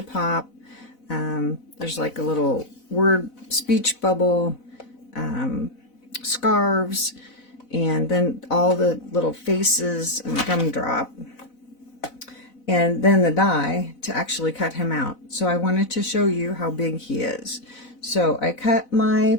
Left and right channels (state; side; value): late; right; 4.0 ms